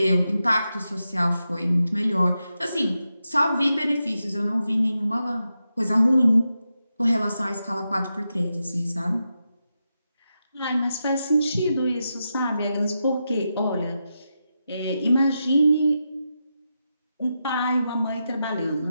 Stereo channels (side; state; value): both; inverted; correlation -0.88